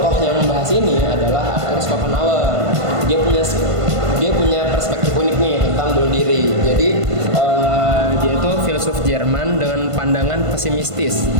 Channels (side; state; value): left; late; 1.5 ms